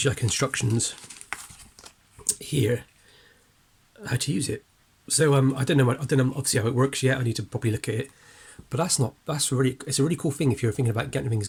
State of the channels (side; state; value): both; identical; correlation 1.00